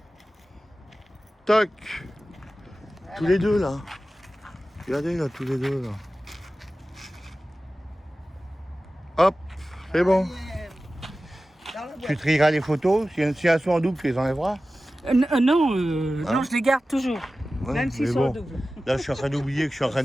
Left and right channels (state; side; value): normal; both; correlation 0.95